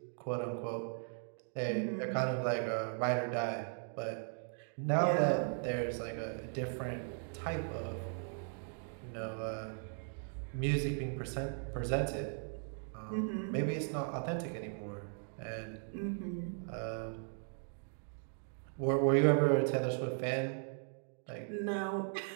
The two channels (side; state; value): left; silent; 53 dB below the other